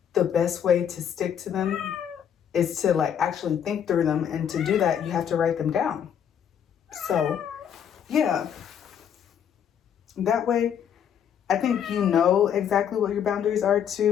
the best way to stick to them is to like actually think through them. And to do that, you have to write them down. So yeah, that way, I think you know exactly what your boundaries are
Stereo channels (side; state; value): right; quieter; 8.6 dB